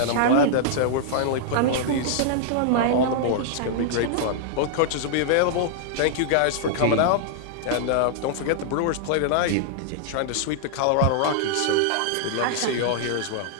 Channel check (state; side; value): different; both; correlation -0.01